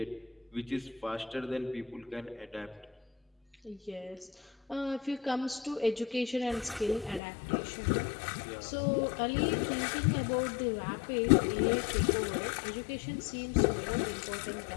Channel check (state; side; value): drops out; right; at 7.2 s